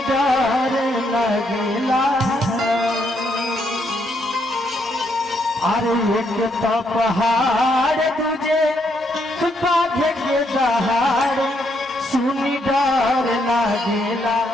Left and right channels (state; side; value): normal; both; correlation 0.75